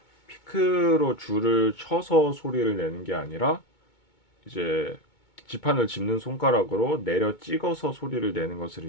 피크로 줄을 쳐서 소리를 내는 게 아니라 이제 지판을 짚는 손가락으로 내려 찍어서 소리를 내는 것을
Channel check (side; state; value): right; late; 2.2 ms